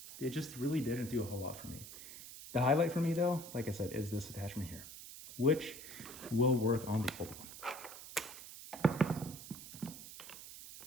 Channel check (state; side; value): noise; right; hiss, 13 dB below the sound